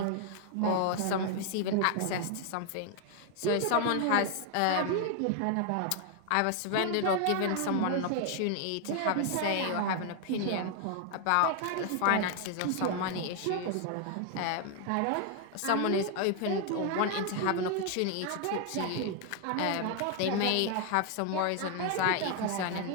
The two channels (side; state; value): both; different; correlation 0.00